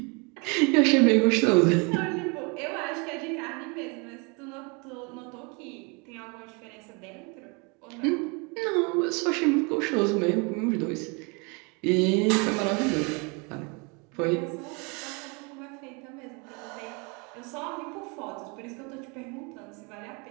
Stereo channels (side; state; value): left; quieter; 31.1 dB